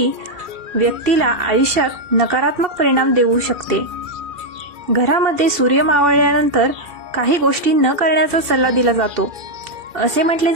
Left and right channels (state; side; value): late; left; 2.7 ms